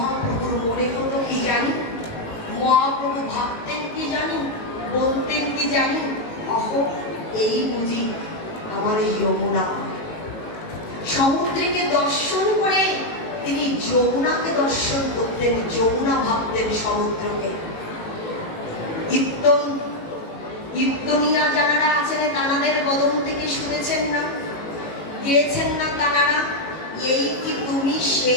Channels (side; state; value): right; late; 18 ms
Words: মনে হতো কি জানি, মহাপ্রভু ভাবতেন কি জানি, বলতেন কি জানি, অহ এই বুঝি আমার যমুনা। সমুদ্রকে দর্শন করে তিনি যমুনাকে দর্শন করতেন, যমুনা ভাবতেন সমুদ্রকে। ইত্তনিয়া যারা আছেন তানাদের বদন থেকে শুনেছেন না, গেয়েছেন না তানারা, এই কি তুমি